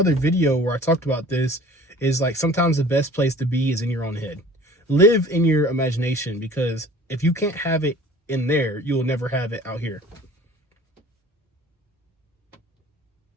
video where I talked about this, is like sometimes the best place to be is in your own head. Live in your imagination, because if you can't have it in there, you'll never have it out here.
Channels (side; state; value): both; normal; correlation 0.47